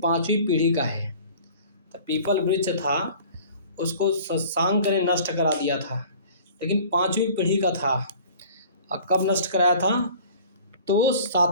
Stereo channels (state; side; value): inverted; both; correlation -0.47